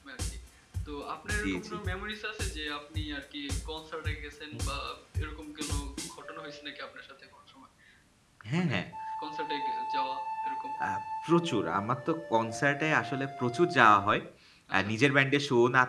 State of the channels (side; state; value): both; identical; correlation 1.00